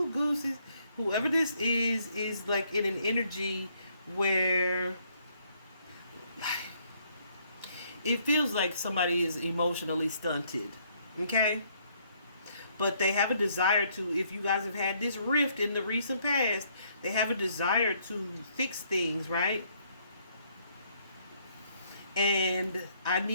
gooses. Whoever this is like in an energy where it feels like somebody is emotionally stunted. Okay? But they have a desire to, if you guys have had this rift in the recent past, they have a desire to fix things, right? And I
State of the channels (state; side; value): inverted; both; correlation -0.68